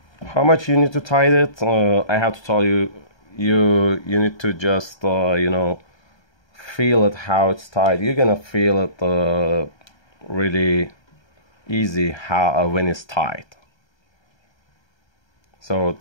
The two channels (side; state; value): right; late; 1.3 ms